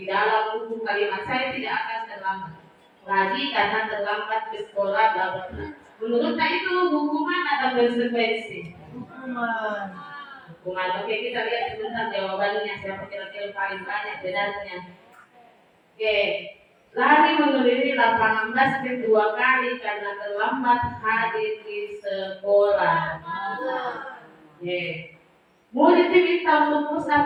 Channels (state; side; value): identical; both; correlation 1.00